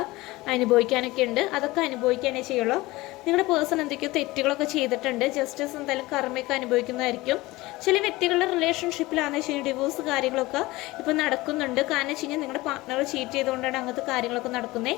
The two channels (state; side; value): quieter; right; 20.2 dB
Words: അനുഭവിക്കാനൊക്കെ ഉണ്ട്. അതൊക്കെ അനുഭവിക്കാനേ ചെയ്യുള്ളൂ. നിങ്ങളുടെ പേഴ്സൺ എന്തൊക്കെയോ തെറ്റുകളൊക്കെ ചെയ്തിട്ടുണ്ട്. ജസ്റ്റിസ് എന്തായാലും കർമ്മയൊക്കെ അനുഭവിക്കുന്നതായിരിക്കും. ചില വ്യക്തികളുടെ റിലേഷൻഷിപ്പിലാണെന്ന് വെച്ച് കഴിഞ്ഞാൽ ഡിവോഴ്സ് കാര്യങ്ങളൊക്കെ ഇപ്പോൾ നടക്കുന്നുണ്ട്. കാരണം വെച്ച് കഴിഞ്ഞാൽ നിങ്ങളുടെ പാർട്ണർ ചീറ്റ് ചെയ്തുകൊണ്ടാണ് അങ്ങനത്തെ കാര്യങ്ങളൊക്കെ